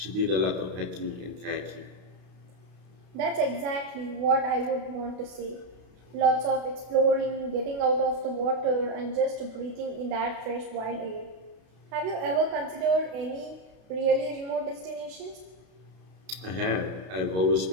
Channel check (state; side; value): late; left; 32 ms